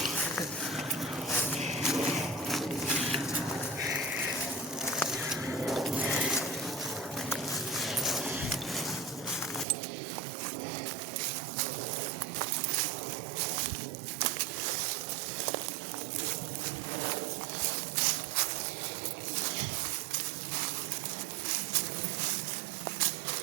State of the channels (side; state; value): left; drops out; at 9.7 s